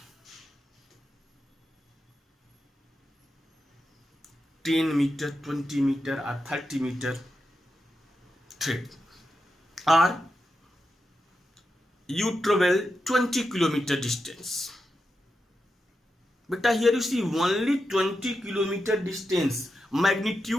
10 meter, 20 meter or 30 meter thread, or you travel 20 kilometer distance. But here you see only 20 kilometer distance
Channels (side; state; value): both; normal; correlation 0.88